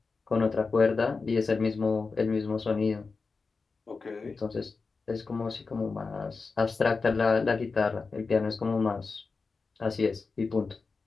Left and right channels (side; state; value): right; quieter; 4.4 dB